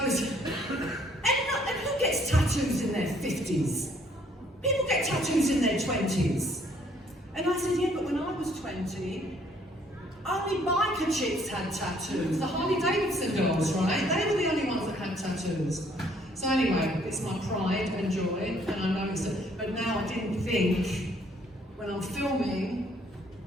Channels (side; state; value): both; normal; correlation 0.63